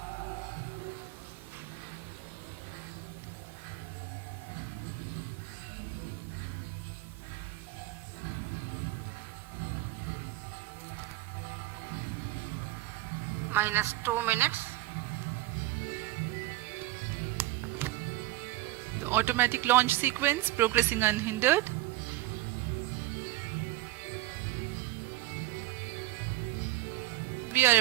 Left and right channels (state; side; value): quieter; left; 17.3 dB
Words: Minus 2 minutes. The automatic launch sequence progressing unhindered. We are